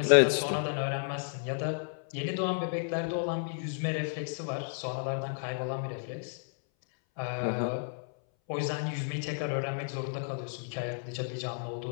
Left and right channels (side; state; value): right; silent; 56 dB below the other